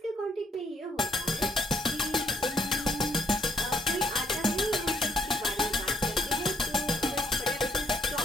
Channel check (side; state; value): both; normal; correlation 0.70